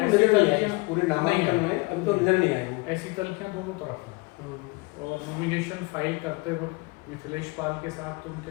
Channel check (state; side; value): quieter; right; 26.5 dB